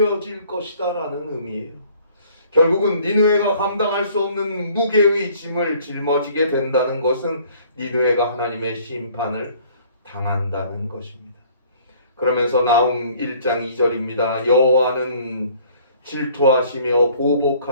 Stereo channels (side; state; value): both; inverted; correlation -0.56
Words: 것이다 라는 의미예요. 결국은 니느웨가 감당할 수 없는 무게의 짐을 짊어지게 된다는 것은 니느웨가 하나님의 심판을 당한다는 것입니다. 그러면서 나훔 1장 2절입니다. 여호와는 질투하시며